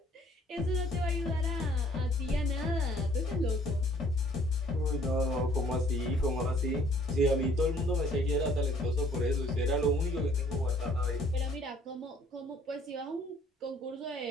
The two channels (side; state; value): both; normal; correlation 0.59